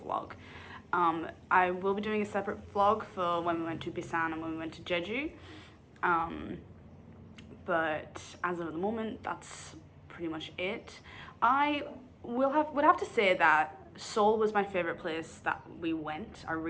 vlog. I will be doing a separate vlog for when we went to Busan and when we went to Jeju. But as of the moment, that's pretty much it. I would have to say that Seoul was my favorite place that we went. I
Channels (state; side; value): identical; both; correlation 1.00